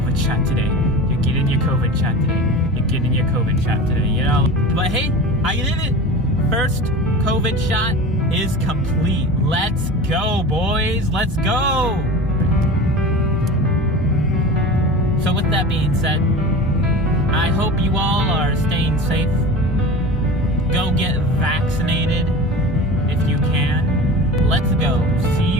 shot today. You're getting your COVID shot today. You're getting your COVID shot today, you know? But hey, I did it! First COVID shot is complete. Let's go, boys! Let's go! So with that being said, I hope you all are staying safe. Go get vaccinated if you can. Let's go. See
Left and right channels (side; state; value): both; normal; correlation 0.33